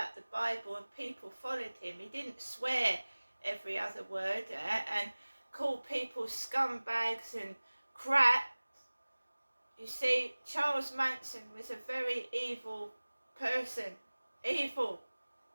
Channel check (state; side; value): inverted; both; correlation -1.00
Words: the Bible and people followed him. He didn't swear every other word and call people scumbags and crap. You see, Charles Manson was a very evil person. Evil.